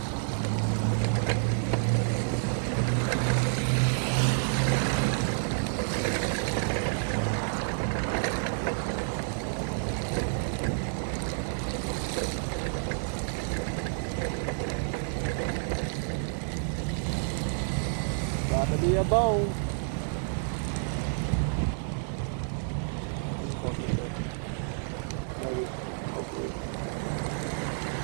Got to be a bone. Maybe. Hopefully.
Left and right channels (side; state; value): left; silent; digital silence